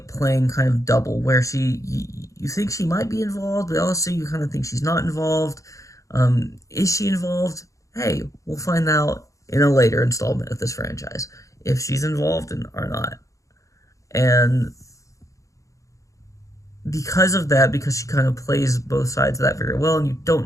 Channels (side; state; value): right; late; 0.16 ms